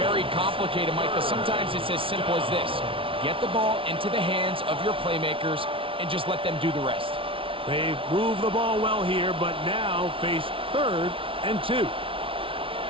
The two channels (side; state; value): left; late; 0.25 ms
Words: complicated, Mike, but sometimes it's as simple as this. Get the ball into the hands of your playmakers and just let them do the rest. They've moved the ball well here, but now face 3rd and 2.